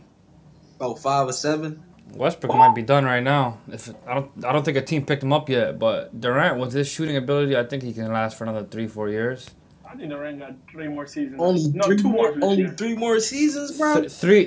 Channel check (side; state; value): both; identical; correlation 1.00